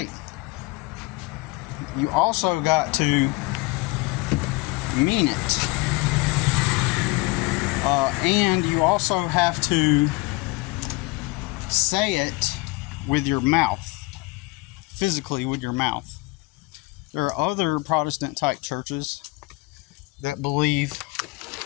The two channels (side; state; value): right; quieter; 24.1 dB